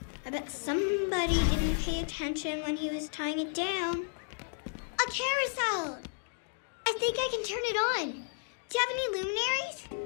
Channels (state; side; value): silent; right; digital silence